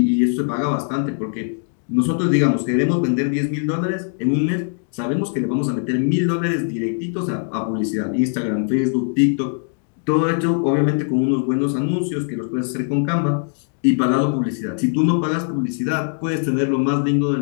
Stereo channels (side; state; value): right; silent; 64 dB below the other